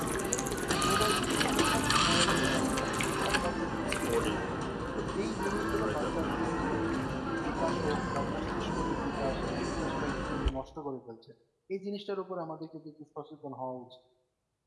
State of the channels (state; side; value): identical; both; correlation 1.00